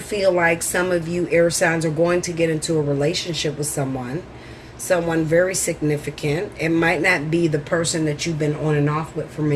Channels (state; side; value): identical; both; correlation 1.00